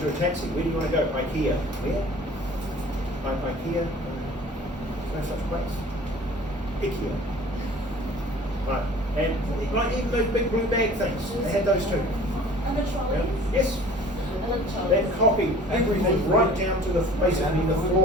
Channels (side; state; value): both; normal; correlation 0.48